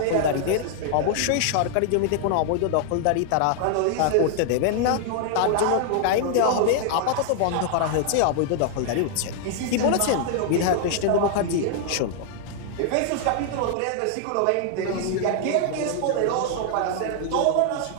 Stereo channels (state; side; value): different; both; correlation 0.00